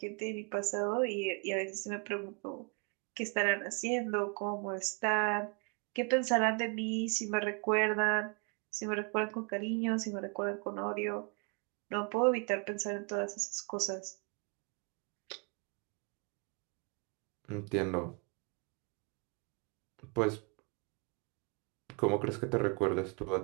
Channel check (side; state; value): left; quieter; 34.7 dB